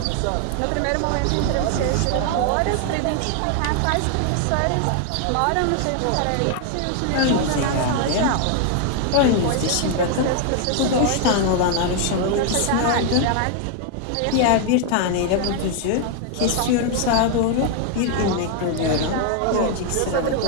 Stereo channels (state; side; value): different; both; correlation 0.00